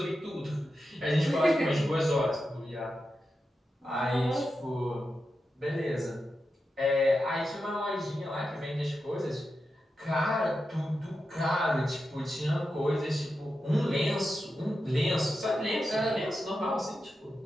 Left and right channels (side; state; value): both; normal; correlation 0.89